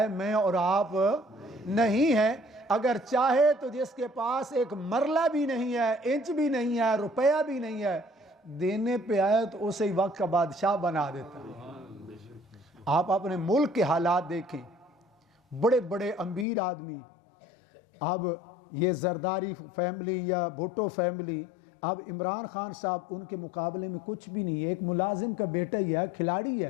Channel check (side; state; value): right; drops out; at 16.4 s